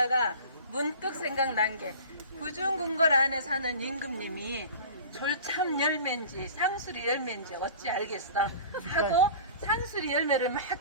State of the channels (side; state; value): both; inverted; correlation -0.40